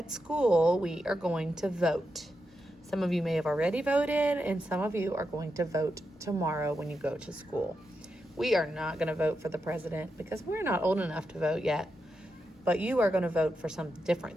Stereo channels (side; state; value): both; normal; correlation 0.86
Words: school, we are going to vote. Some of you may have already voted, and some of you are going to vote tomorrow when you go to school. We are not going to vote for the president because we're not old enough to vote yet, but you are going to vote for some